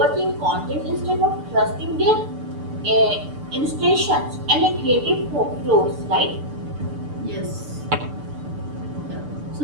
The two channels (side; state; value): left; late; 6.8 ms